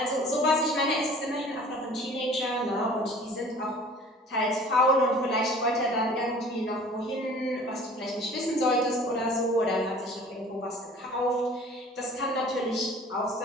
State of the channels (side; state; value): both; normal; correlation 0.47